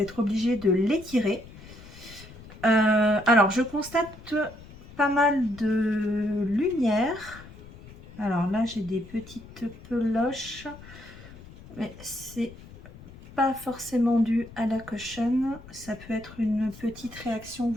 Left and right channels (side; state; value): left; noise; rumble, 18 dB below the sound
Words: être obligée de l'étirer. Alors je constate pas mal de lumière. Alors là j'ai des petites peloches. Mais c'est pas forcément dû à la cushion, ça peut être une petite réaction,